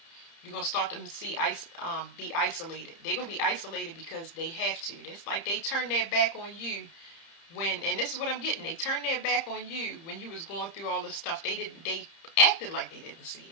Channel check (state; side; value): late; right; 30 ms